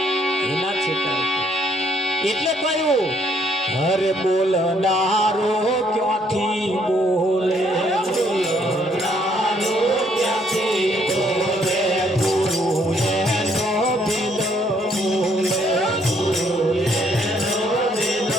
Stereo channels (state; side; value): normal; both; correlation 0.68